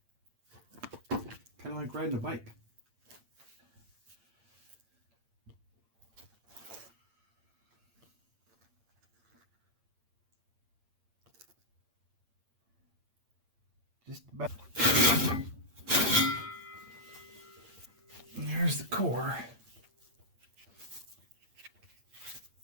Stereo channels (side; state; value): left; late; 8.7 ms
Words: Kind of like riding a bike. Just about. And there's the core.